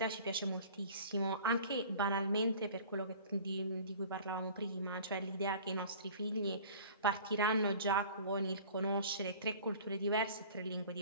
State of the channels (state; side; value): inverted; both; correlation -0.45